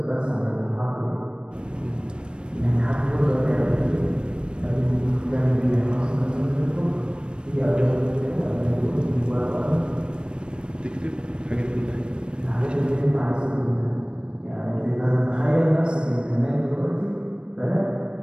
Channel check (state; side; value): late; left; 0.055 ms